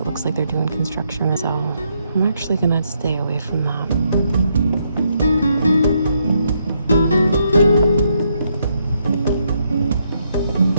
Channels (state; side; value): inverted; both; correlation -0.77